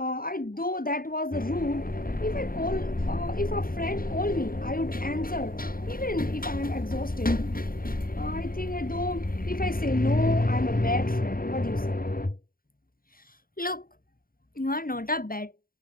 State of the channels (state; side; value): late; right; 0.42 ms